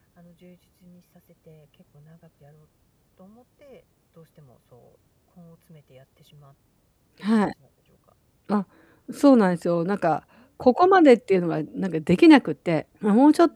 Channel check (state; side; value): identical; both; correlation 1.00